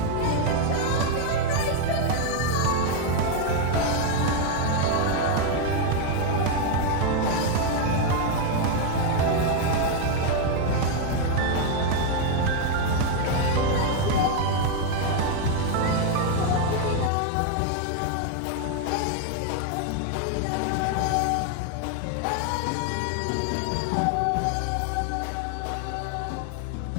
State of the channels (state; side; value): different; both; correlation 0.01